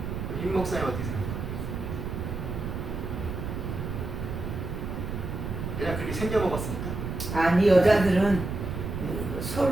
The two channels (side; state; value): right; noise; rumble, 5 dB below the sound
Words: 임 목사님 어떻게 생각해요? 그냥 그렇게 생겨 먹었습니까? 아니 여자들은